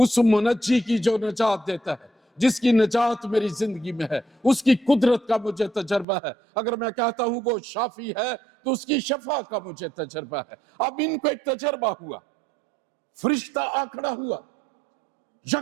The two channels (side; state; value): left; drops out; at 6.1 s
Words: منجی کی جو نجات دیتا ہے، جس کی نجات میری زندگی میں ہے، اس کی قدرت کا مجھے تجربہ ہے۔ اگر میں کہتا ہوں وہ شافی ہے تو اس کی شفا کا مجھے تجربہ ہے۔ اب ان کو ایک تجربہ ہوا، فرشتہ آ کھڑا ہوا